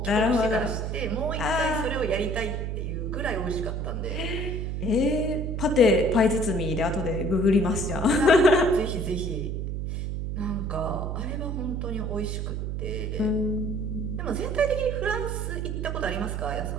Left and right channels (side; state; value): right; noise; hum, 3 dB below the sound